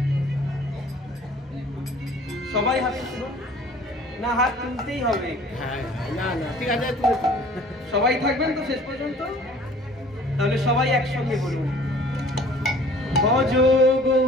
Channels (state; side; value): normal; both; correlation 0.50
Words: সবাই হাত তুলুন। না, হাত তুলতেই হবে। হ্যাঁ, না না ঠিক আছে, তুলে সবাই থাকবেন তো শেষ পর্যন্ত? তাহলে সবাই একসঙ্গে বলুন, ভজ